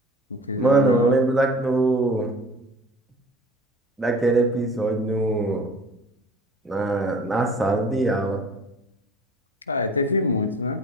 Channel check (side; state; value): both; normal; correlation 0.45